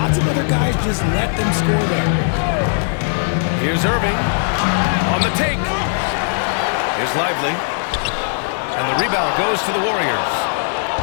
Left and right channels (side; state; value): right; silent; digital silence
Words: of other guys just let them score there. Here's Irving on the take. Here's Lively. And the rebound goes to the Warriors.